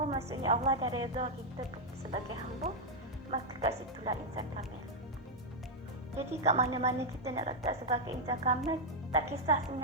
maksudnya Allah dah redha kita sebagai hamba, maka kat situlah insan kamil. Jadi kat mana-mana kita nak letak sebagai insan kamil, tak kisah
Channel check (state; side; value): normal; both; correlation -0.02